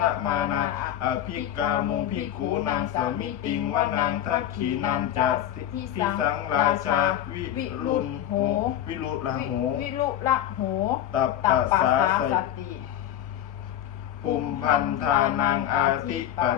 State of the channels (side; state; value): right; quieter; 11.4 dB